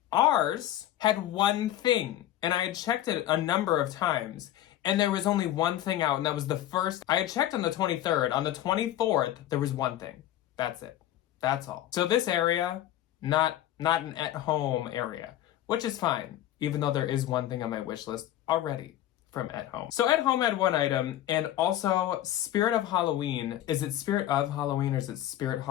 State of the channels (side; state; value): right; quieter; 12.9 dB